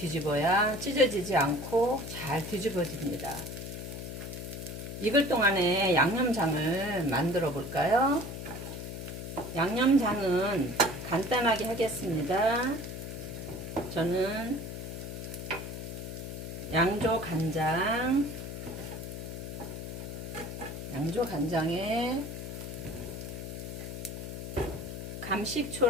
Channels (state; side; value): noise; left; hum, 7 dB below the sound